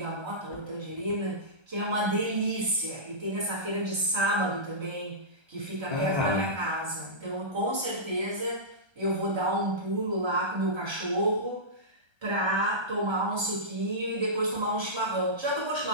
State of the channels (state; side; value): late; left; 1.3 ms